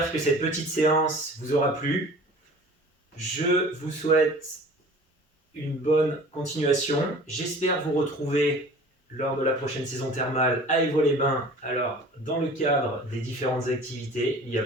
que cette petite séance vous aura plu. Je vous souhaite une bonne continuation. J'espère vous retrouver lors de la prochaine saison thermale à Évaux-les-Bains. Alors, dans le cadre des différentes activités, il y a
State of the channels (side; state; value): both; normal; correlation 0.44